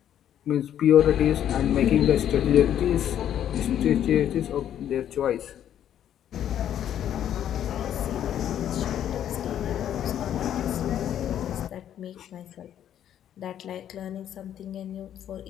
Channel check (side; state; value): right; quieter; 10.4 dB